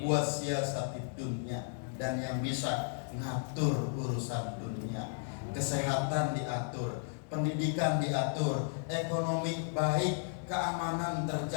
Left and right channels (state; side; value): silent; right; digital silence